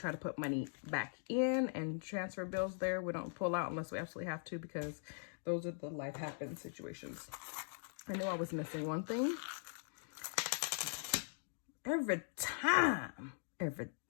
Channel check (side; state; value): right; silent; digital silence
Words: to put money back in and transfer bills there. We don't pull out unless we absolutely have to, because those are the life happens situations. I knew I was missing one thing. Every time I